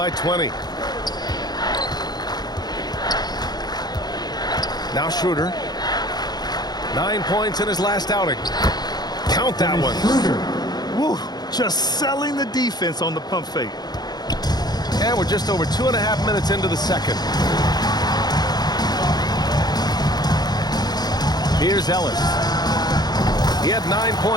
20. Now Schroeder. 9 points in his last outing. Count that one. Woo, just selling the defense on the pump fake. And we're just over 2.5 minutes into the second. Here's Ellis. He had 9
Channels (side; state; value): right; late; 0.20 ms